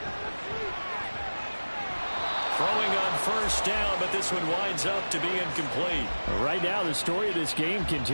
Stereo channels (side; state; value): both; inverted; correlation -1.00